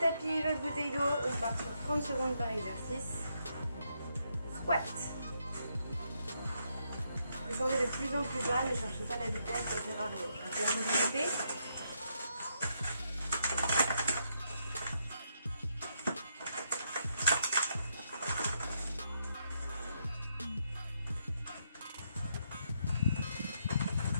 votre bouteille d'eau, on part sur 30 secondes par exercice. Squat. Descendez de plus en plus bas, ne cherchez pas la vitesse, ça sert à rien. Cherchez la mobilité.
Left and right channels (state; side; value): inverted; both; correlation -0.78